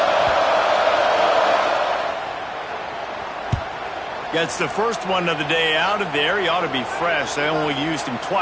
Gets the first one of the day out of there. He ought to be fresh. They only used him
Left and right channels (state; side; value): identical; both; correlation 1.00